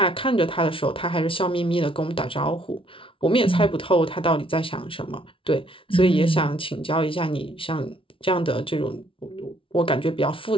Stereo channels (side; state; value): right; late; 0.25 ms